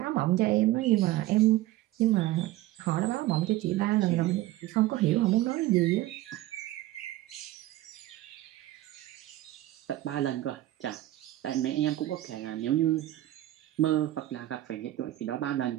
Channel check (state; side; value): quieter; left; 15.5 dB